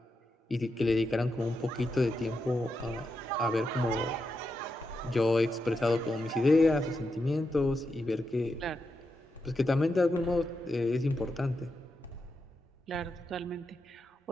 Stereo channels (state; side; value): normal; both; correlation 0.86